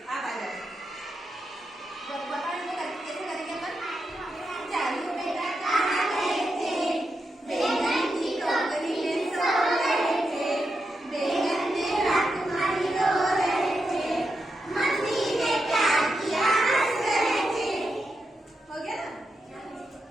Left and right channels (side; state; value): both; normal; correlation 0.86